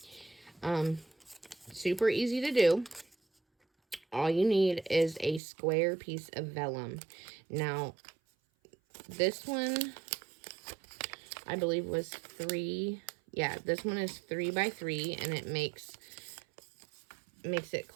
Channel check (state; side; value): drops out; left; at 5.4 s